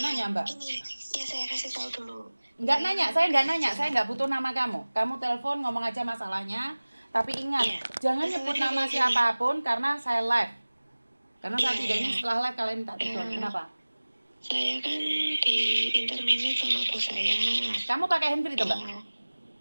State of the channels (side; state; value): both; inverted; correlation -1.00